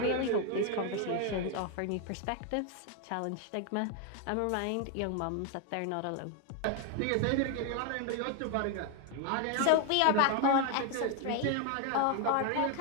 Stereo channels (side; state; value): both; different; correlation 0.01